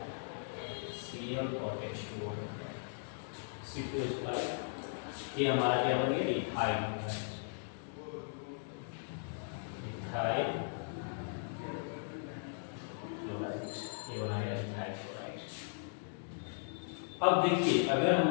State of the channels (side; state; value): right; silent; digital silence